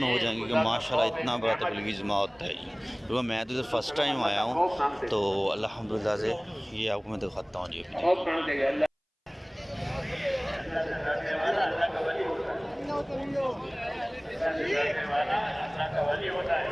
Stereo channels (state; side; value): identical; both; correlation 1.00